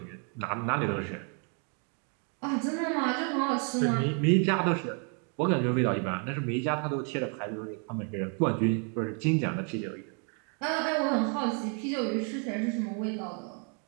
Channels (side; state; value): left; quieter; 39.8 dB